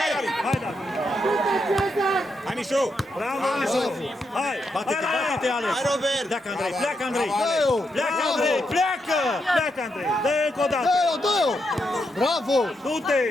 hai, Dani. Hai, da. Hai, Mișu. Bravo, Mișu. Hai, Bate-te, bate-te, Alex. Hai, Robert! Pleacă, Andrei, pleacă, Andrei. Dă-o! Pleacă, Andrei, pleacă. pleacă, Andrei. Dă încă o dată. Dă-o, dă-o! Bravo! Du-te.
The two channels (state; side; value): normal; both; correlation 0.82